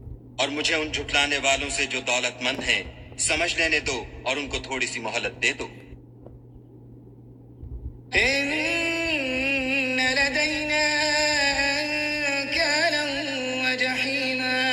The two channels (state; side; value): identical; both; correlation 1.00